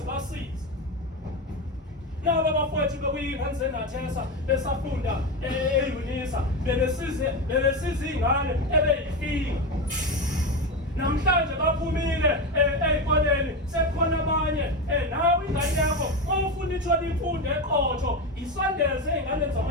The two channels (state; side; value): normal; both; correlation 0.17